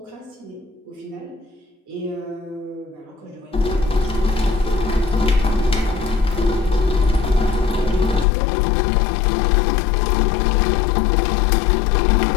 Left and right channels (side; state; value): right; drops out; at 8.2 s